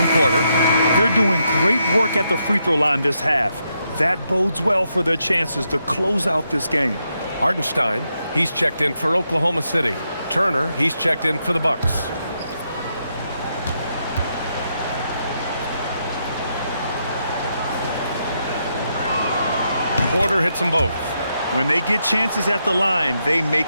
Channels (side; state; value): both; inverted; correlation -0.81